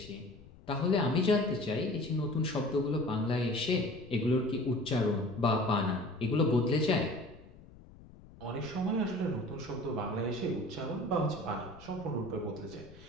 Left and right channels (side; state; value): left; noise; rumble, 21 dB below the sound